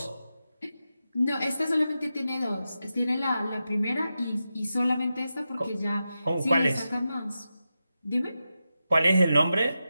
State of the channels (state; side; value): inverted; both; correlation -0.90